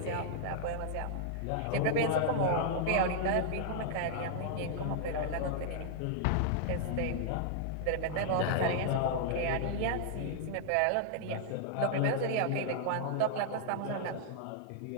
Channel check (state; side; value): different; both; correlation -0.01